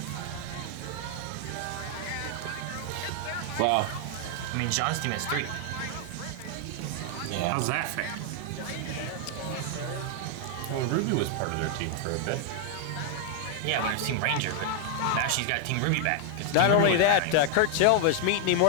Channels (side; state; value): both; different; correlation 0.00